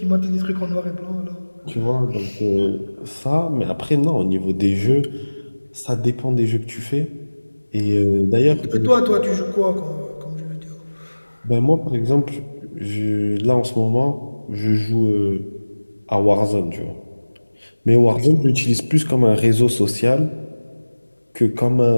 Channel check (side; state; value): both; inverted; correlation -1.00